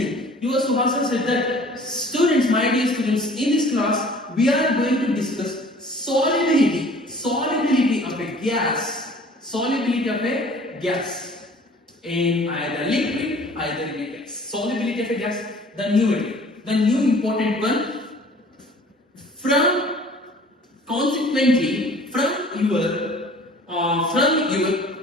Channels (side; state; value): both; normal; correlation 0.49